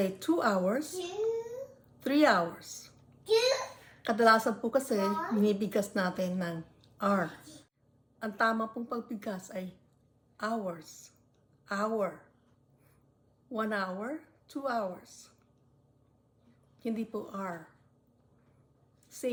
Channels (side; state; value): both; identical; correlation 1.00